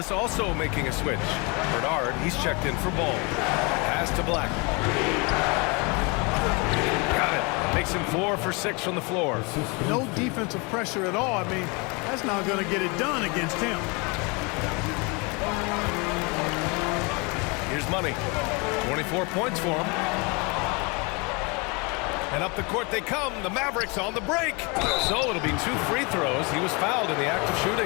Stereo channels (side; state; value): right; quieter; 29.7 dB